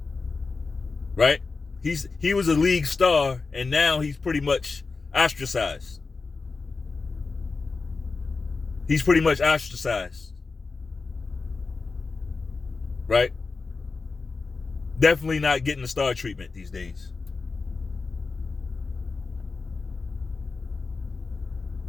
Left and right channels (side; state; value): right; quieter; 4.2 dB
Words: right? He was a league star, and now he's pretty much ostracized. He's pretty much ostracized, right? Definitely not getting the star treatment these days.